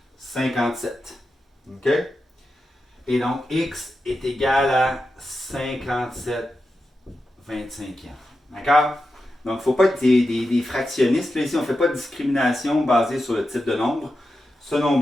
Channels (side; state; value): both; normal; correlation 0.90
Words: 57. OK? Et donc, x est égal à 57 25e. D'accord? Donc, il ne faut pas être des fractionnistes. Là, ici, on ne fait pas de discrimination basée sur le type de nombre. Ce